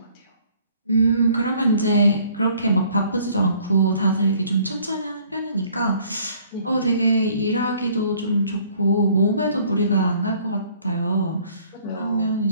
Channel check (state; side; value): inverted; both; correlation -0.58